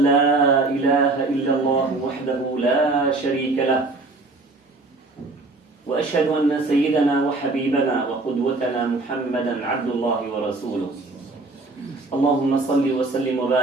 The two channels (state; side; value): quieter; left; 3.3 dB